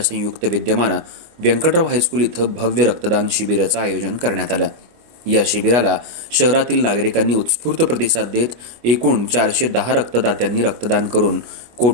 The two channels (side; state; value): left; late; 25 ms